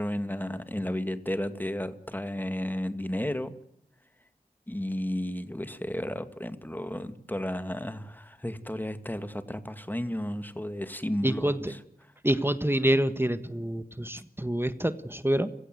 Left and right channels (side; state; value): both; normal; correlation 0.89